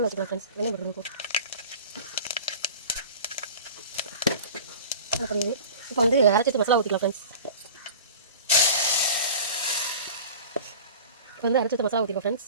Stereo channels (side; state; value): both; inverted; correlation -0.37